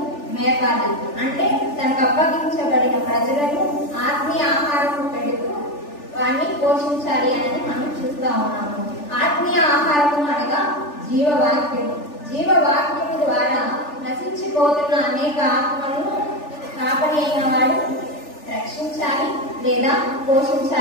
మేపాలి. అంటే తనకు అప్పగించబడిన ప్రజలను ఆత్మీయ ఆహారం పెడుతూ వారిని పోషించాలి అని మనం చూస్తూ ఉన్నాము. ఆత్మీయ ఆహారము అనగా జీవవాక్యము. జీవవాక్యము ద్వారా నశించిపోతున్న అనేక ఆత్మలను కాపరి అయిన వాడు రక్షించాలి లేదా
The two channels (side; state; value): right; late; 3.4 ms